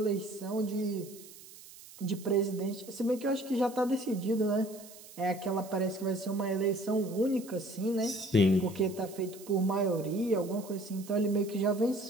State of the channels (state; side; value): noise; right; hiss, 19 dB below the sound